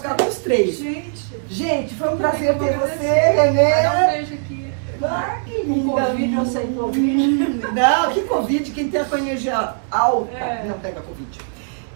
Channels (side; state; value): left; silent; digital silence